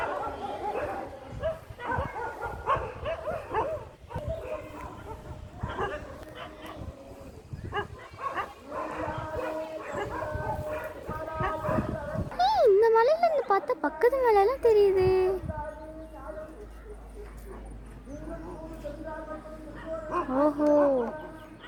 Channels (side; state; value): both; identical; correlation 1.00